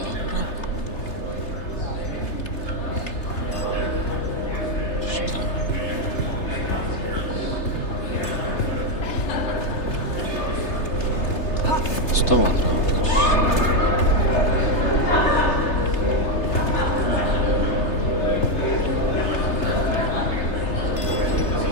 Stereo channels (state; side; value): late; right; 3.3 ms